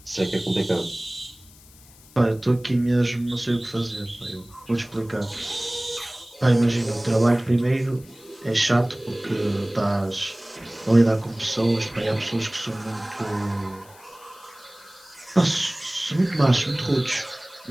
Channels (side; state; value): left; noise; hiss, 24 dB below the sound